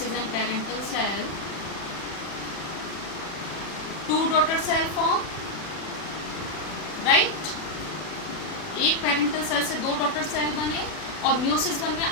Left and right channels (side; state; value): right; late; 40 ms